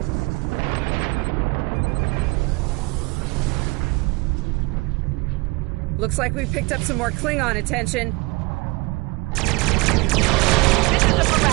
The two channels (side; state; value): left; quieter; 25.0 dB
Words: Looks like we picked up some more Klingon attention. This is the